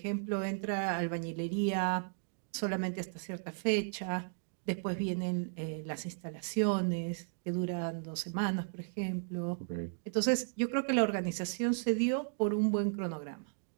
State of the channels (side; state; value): left; silent; digital silence